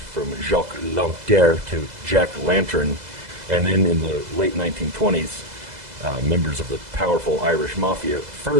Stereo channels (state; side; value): late; left; 2.0 ms